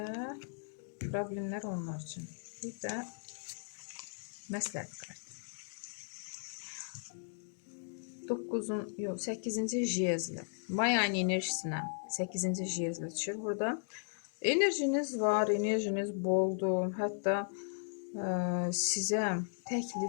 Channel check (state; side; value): silent; right; digital silence